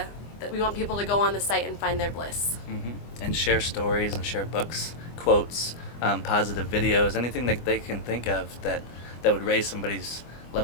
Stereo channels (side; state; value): right; late; 24 ms